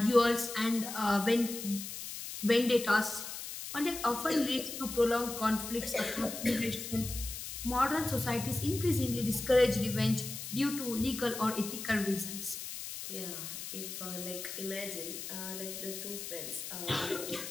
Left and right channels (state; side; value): noise; left; hiss, 8 dB below the sound